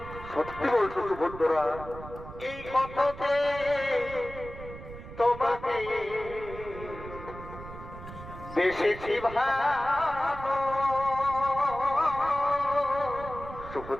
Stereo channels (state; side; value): noise; right; rumble, 13 dB below the sound